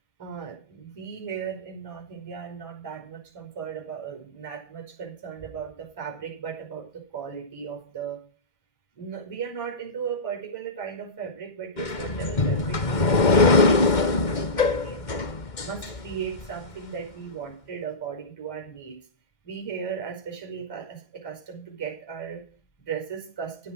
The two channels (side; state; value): right; late; 2.1 ms